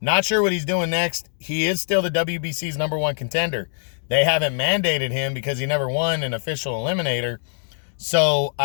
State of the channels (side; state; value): right; silent; 64 dB below the other